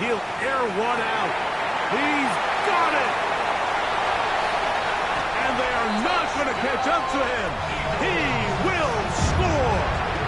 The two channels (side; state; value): both; identical; correlation 1.00